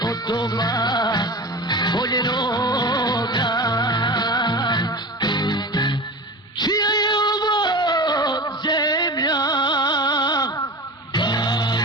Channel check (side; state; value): both; normal; correlation 0.31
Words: od doma voljenoga. Čija je ovo zemlja?